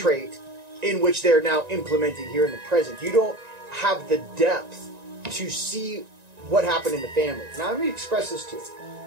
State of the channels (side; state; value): left; late; 1.9 ms